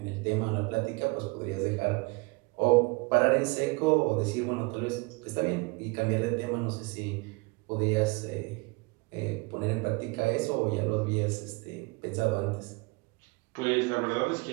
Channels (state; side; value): quieter; left; 27.2 dB